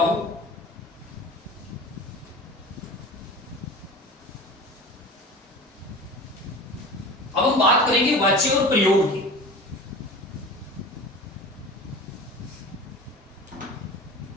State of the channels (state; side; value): normal; both; correlation 0.35